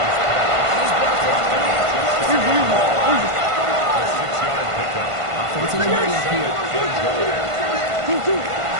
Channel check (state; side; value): late; left; 1.5 ms